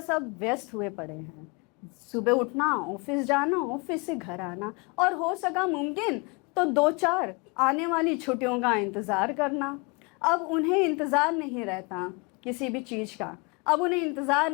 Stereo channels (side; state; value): right; quieter; 29.5 dB